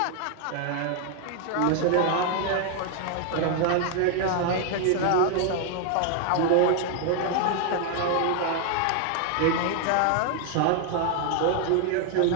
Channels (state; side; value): different; both; correlation 0.00